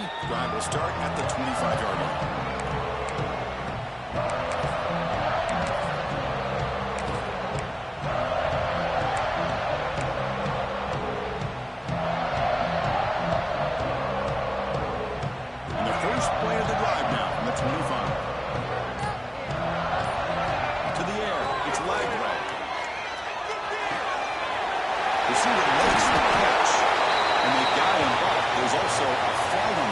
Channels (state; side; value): identical; both; correlation 1.00